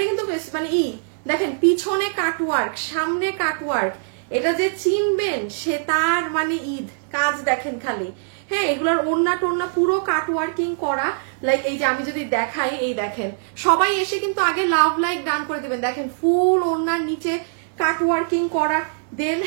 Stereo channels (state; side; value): silent; left; digital silence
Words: কিন্তু মানে দেখেন পিছনে কাটওয়ার্ক, সামনে কাটওয়ার্ক, এটা যে চিনবেন সে তার মানে ঈদ কাজ দেখেন খালি। হ্যাঁ, এগুলোর ওড়না টোড়না পুরো কাটওয়ার্কিং করা। লাইক এই যে আমি যদি দেখাই, এই দেখেন সবাই এসে কিন্তু আগে লাভ লাইক গান করে দিবেন। দেখেন ফুল ওড়নার নিচে কাটওয়ার্কিং করা। দেন